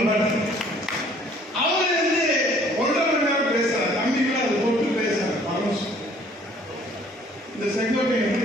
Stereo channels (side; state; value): both; normal; correlation 0.57